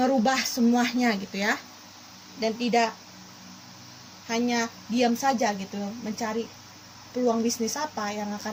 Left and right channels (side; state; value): both; identical; correlation 1.00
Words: semuanya gitu ya. Dan tidak hanya diam saja gitu, mencari peluang bisnis apa yang